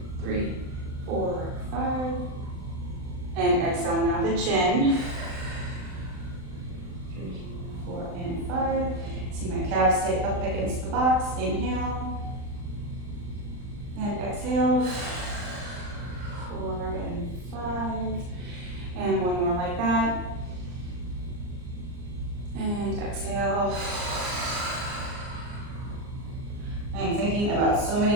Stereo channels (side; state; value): left; late; 39 ms